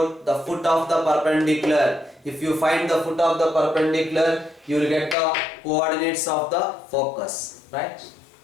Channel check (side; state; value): right; drops out; at 5.2 s